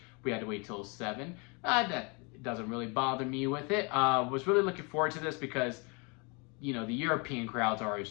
we had to wait till 7. That doesn't really bother me with it. Was really looking forward to this because, you know, the European crowds are always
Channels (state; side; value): quieter; right; 31.2 dB